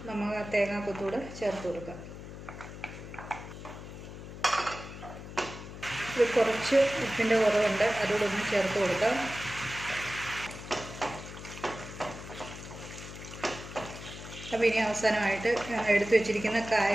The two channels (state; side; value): noise; left; hum, 12 dB below the sound